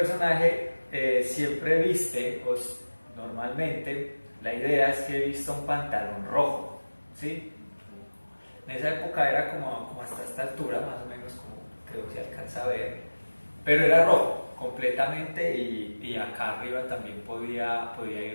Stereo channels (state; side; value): inverted; both; correlation -1.00